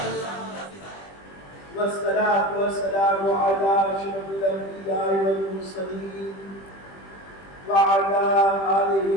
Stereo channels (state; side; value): late; right; 20 ms